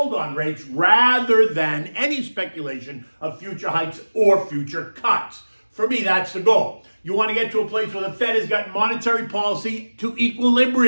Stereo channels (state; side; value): inverted; both; correlation -1.00